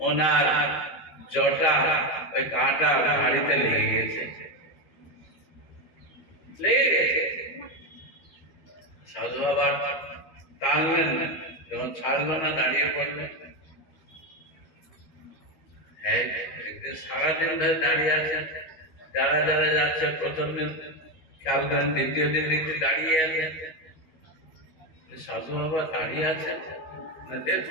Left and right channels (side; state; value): right; late; 13 ms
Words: ওনার জটা ওই কাঁটা হাড়িতে লেগে গেছে। সাধু বাবা টানলেন না, যখন ছাড়লো না দাঁড়িয়ে পড়লেন। একদিন সারাদিন ধরে দাঁড়িয়ে আছেন, যারা যারা যাচ্ছে প্রথম দিন খেয়াল করেন, দ্বিতীয় দিন দেখতে দাঁড়িয়ে আছেন। সাধু বাবা দাঁড়িয়ে আছেন না,